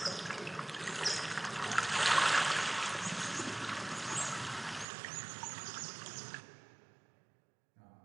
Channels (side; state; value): left; drops out; at 4.9 s